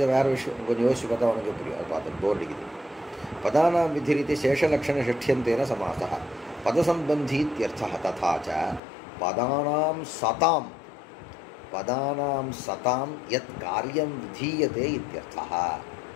வேறு விஷயம் கொஞ்சம் யோசிச்சு பார்த்தா உனக்கு புரியும். அது பார்த்து போர் அடிக்குது. பதானாம் விதிரிதி சேஷலக்ஷணஷஷ்ட்யந்தேன சமாசः பதசம்பந்தீத்யர்த்தः ததா ச பதானாம் சதாம் யத் காரியம் விதீயதே இத்யர்த்தः.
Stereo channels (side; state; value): right; drops out; at 8.8 s